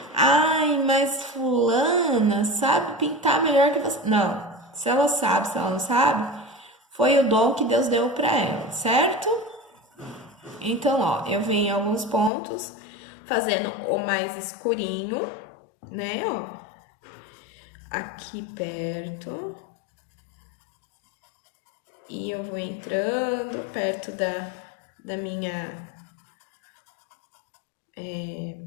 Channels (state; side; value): drops out; right; at 12.3 s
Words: ai, mas fulana sabe pintar melhor que você. Não, se ela sabe, se ela não sabe, foi o dom que Deus deu pra ela, certo? Então, ó, eu venho em alguns pontos fazendo o mais escurinho, né, ó. Aqui perto. E eu vou entrando perto da minha